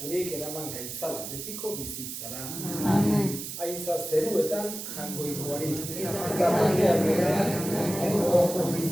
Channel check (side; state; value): right; noise; hiss, 8 dB below the sound